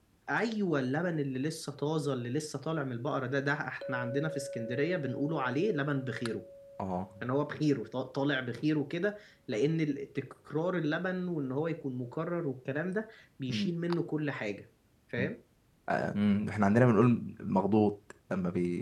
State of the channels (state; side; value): identical; both; correlation 1.00